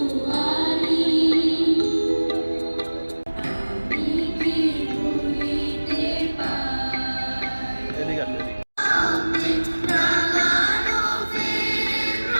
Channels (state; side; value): inverted; both; correlation -1.00